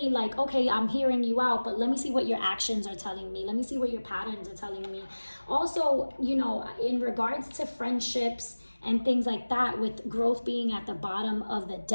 like, okay, I'm hearing you out, but let me see what your actions are telling me. Let me see what your patterns are telling me. Also, in regards to friendships and things like that, with growth being at the bottom of the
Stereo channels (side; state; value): both; inverted; correlation -1.00